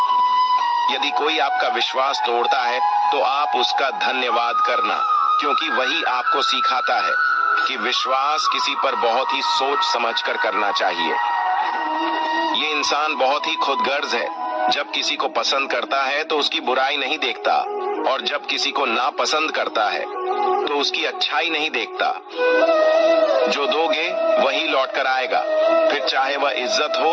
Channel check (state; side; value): identical; both; correlation 1.00